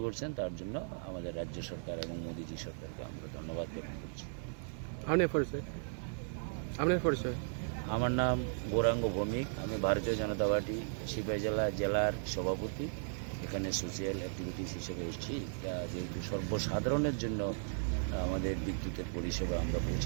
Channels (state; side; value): silent; left; digital silence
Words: করছেন তার জন্য আমাদের রাজ্য সরকার এবং মোদীজি সরকারকে আমরা ধন্যবাদ জ্ঞাপন করছি। আপনার পরিচয়? আমার নাম গৌরাঙ্গ ভৌমিক, আমি ভারতীয় জনতা পার্টি সিপাহী জেলার সভাপতি। এখানে সোশিয়াল অ্যাক্টিভিটিস হিসেবে এসেছি। যেহেতু সর্বসাধারণের জন্য আমাদের বিদ্যুতের পরিষেবা আমরা